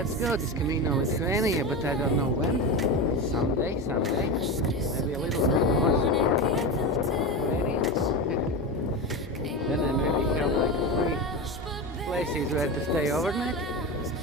go. This Camino Lithuania, but I don't know when. Someday. Maybe a little bit more Lithuanians. Then I maybe have like 3 places where to stay overnight.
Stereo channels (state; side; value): normal; both; correlation 0.21